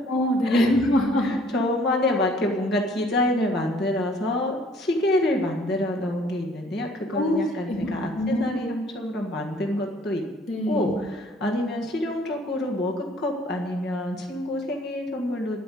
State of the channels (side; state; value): both; normal; correlation 0.58